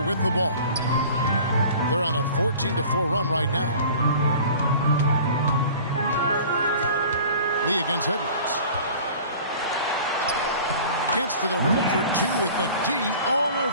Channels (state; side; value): inverted; both; correlation -0.44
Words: with the ball. They're on a 14-4 run right now. Lee against Edwards. Gets to the rim for 2 with the D all